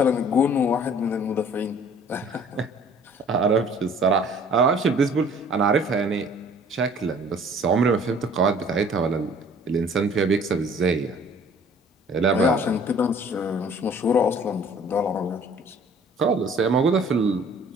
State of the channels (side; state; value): both; normal; correlation 0.53